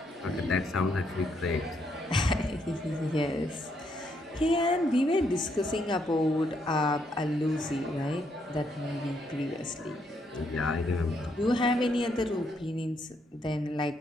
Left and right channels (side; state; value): both; normal; correlation 0.75